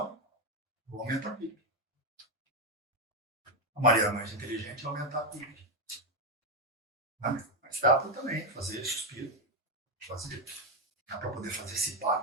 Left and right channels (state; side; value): normal; both; correlation 0.06